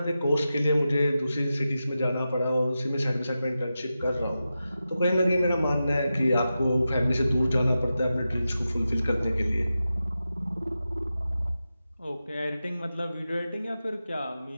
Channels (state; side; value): inverted; both; correlation -0.91